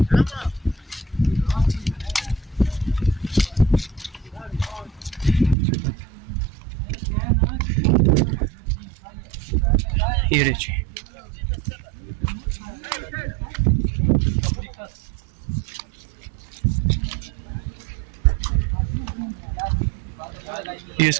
ये देखिए, ये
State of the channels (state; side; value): drops out; left; at 5.6 s